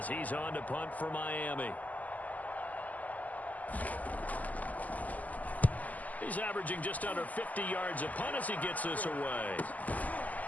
he's on to punt for Miami. He's averaging just under 50 yards a punt as he gets this away.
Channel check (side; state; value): right; late; 0.078 ms